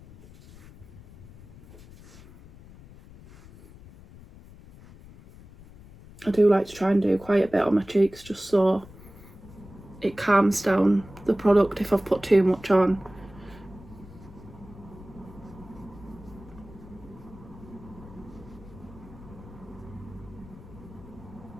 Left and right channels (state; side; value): noise; left; rumble, 19 dB below the sound